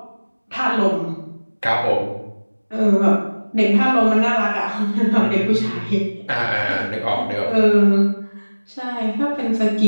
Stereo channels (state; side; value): inverted; both; correlation -1.00